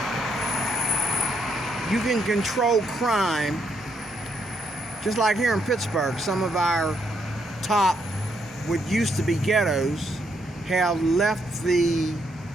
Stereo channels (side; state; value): both; normal; correlation 0.76